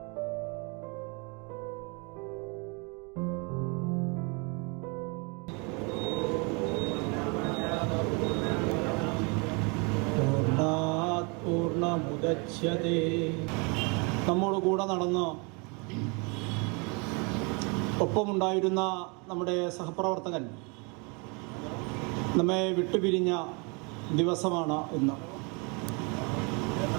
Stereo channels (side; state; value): left; quieter; 31.7 dB